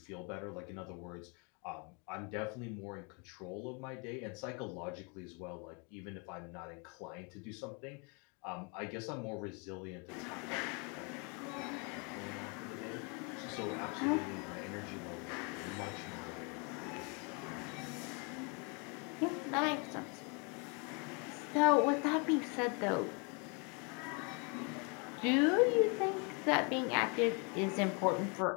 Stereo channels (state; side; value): quieter; right; 33.6 dB